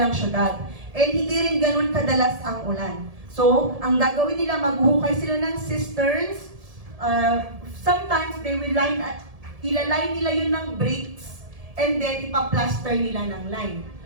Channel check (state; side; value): late; left; 1.7 ms